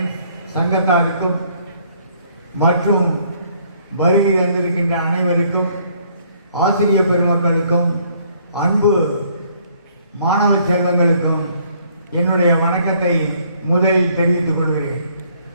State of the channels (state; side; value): inverted; both; correlation -0.64